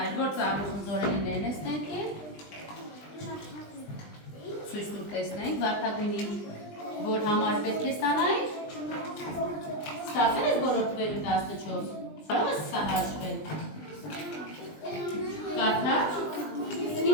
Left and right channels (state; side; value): late; right; 20 ms